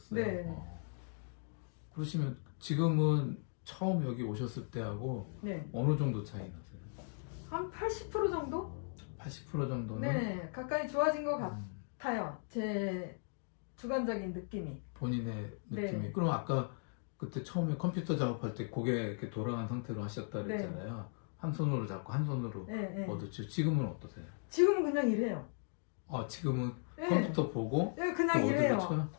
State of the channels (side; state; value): right; silent; 53 dB below the other